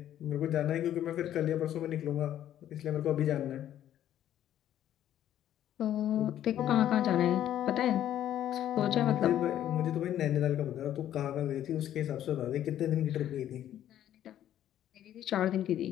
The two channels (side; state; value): right; quieter; 11.5 dB